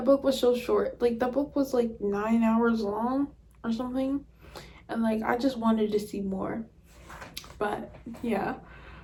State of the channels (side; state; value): both; identical; correlation 1.00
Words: book was so short. Like, that book was like 9 hours long or something, and like I just wanted to see more. But yeah.